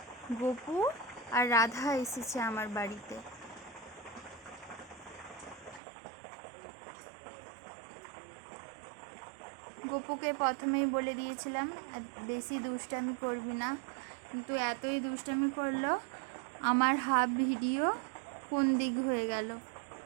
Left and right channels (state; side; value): drops out; left; at 5.8 s